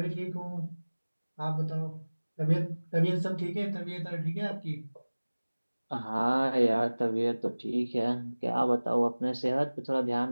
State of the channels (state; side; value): inverted; both; correlation -1.00